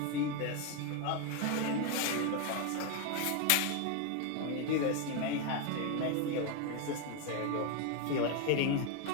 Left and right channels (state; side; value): different; both; correlation 0.01